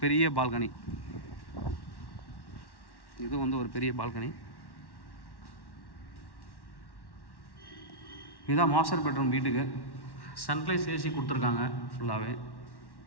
பெரிய பால்கனி. இது வந்து ஒரு பெரிய பால்கனி. இதுதான் மாஸ்டர் பெட்ரூம் வீட்டுக்கு. சன்லைஸ் ஏசி கொடுத்துருக்காங்க ஃபுல்லாகவே.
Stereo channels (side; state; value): right; late; 1.1 ms